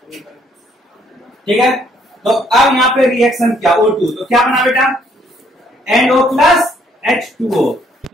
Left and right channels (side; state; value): both; normal; correlation 0.66